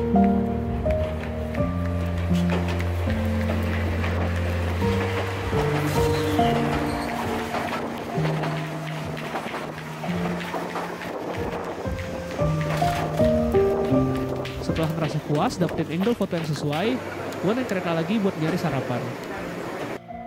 Setelah merasa puas dapetin angle foto yang sesuai, gue naik kereta lagi buat nyari sarapan.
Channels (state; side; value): identical; both; correlation 1.00